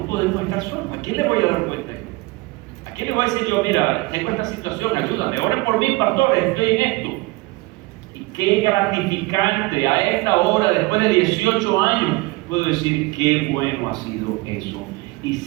podemos estar solos. ¿A quién le voy a dar cuenta? ¿A quién le voy a decir yo, mira, tengo esta situación, ayúdame, oren por mí, pastores, estoy en esto? Y qué gratificante a esta hora, después de 18 años, puedo decir qué bueno ha sido eso. Y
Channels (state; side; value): quieter; left; 22.8 dB